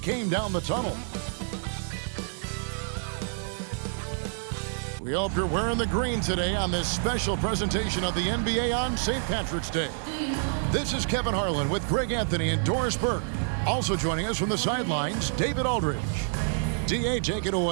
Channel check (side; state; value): left; silent; 56 dB below the other